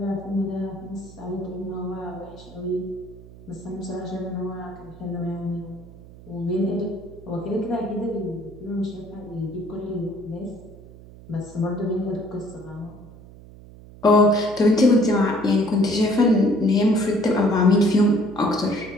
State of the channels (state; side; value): noise; right; hum, 19 dB below the sound